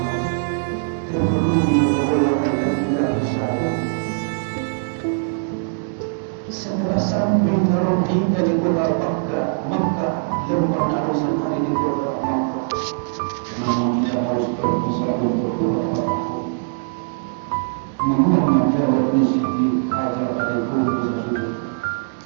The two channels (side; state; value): left; silent; digital silence